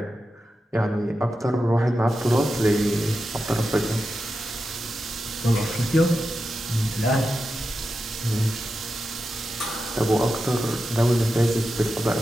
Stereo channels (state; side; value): normal; both; correlation 0.90